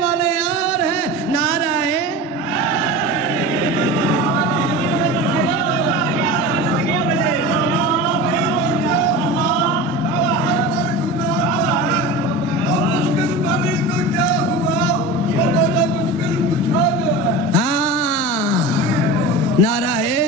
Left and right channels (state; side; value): normal; both; correlation 0.31